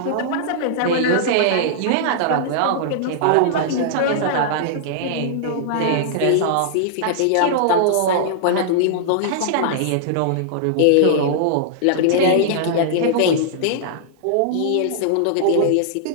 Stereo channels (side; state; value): both; different; correlation -0.01